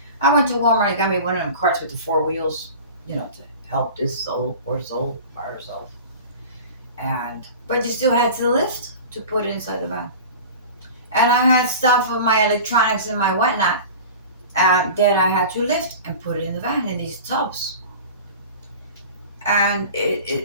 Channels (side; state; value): both; inverted; correlation -0.36